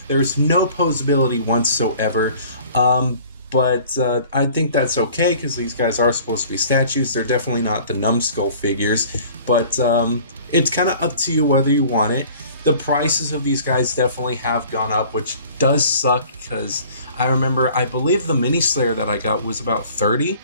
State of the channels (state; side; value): inverted; both; correlation -0.49